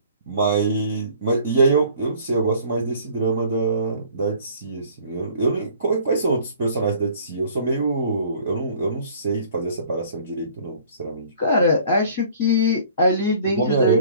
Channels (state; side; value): inverted; both; correlation -0.53